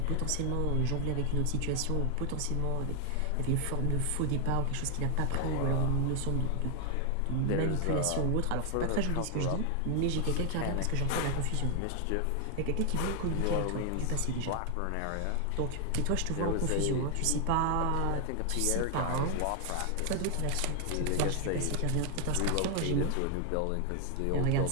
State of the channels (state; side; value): different; both; correlation 0.00